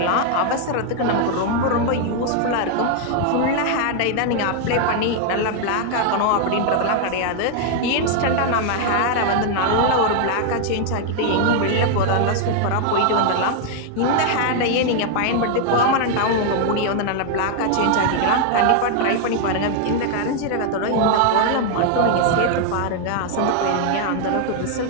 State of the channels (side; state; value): both; different; correlation 0.00